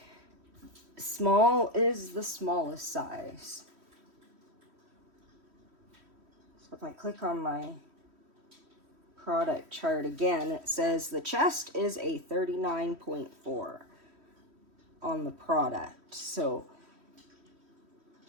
small is the smallest size. So if I click on my product chart again, it says the chest is a 39.4 on the product. So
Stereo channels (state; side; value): late; left; 3.1 ms